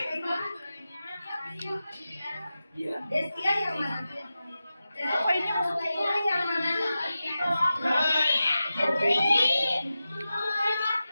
Destia yang mana? Apa ini yang mana?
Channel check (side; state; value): both; inverted; correlation -0.93